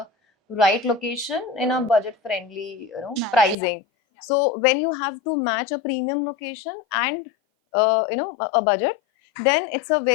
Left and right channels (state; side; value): drops out; right; at 3.6 s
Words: right location in a budget friendly Nice. pricing. Yeah. So when you have to match a premium location and a budget, then it's a